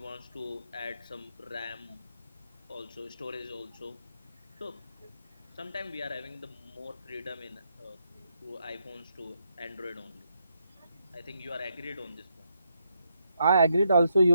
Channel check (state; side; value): inverted; both; correlation -0.79